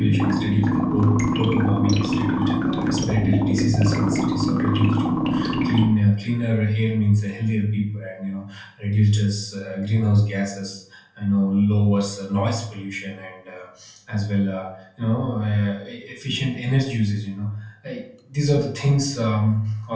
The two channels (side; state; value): both; identical; correlation 1.00